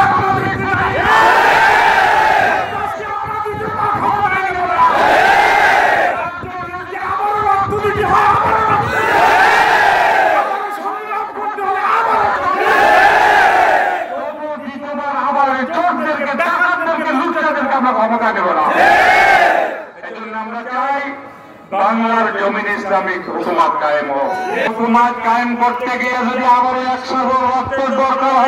ক্ষমতা দেব না। এই জন্য আমরা চাই বাংলার জমিন ইসলামিক হুকুমত কায়েম হোক। হুকুমত কায়েম করতে গিয়ে যদি আবারও 100 রক্তের দরকার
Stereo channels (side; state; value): both; identical; correlation 1.00